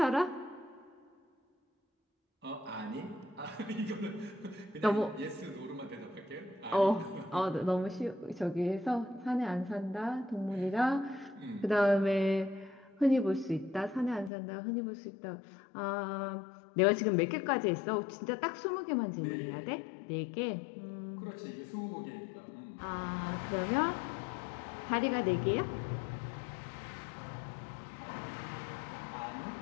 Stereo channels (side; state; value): right; drops out; at 14.3 s